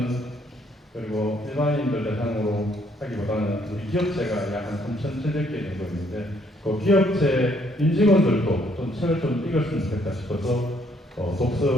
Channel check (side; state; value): both; normal; correlation 0.68